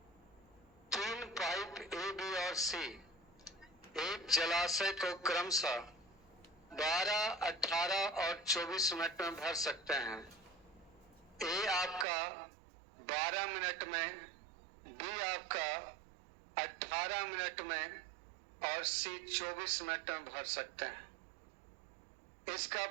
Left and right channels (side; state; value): left; drops out; at 12.1 s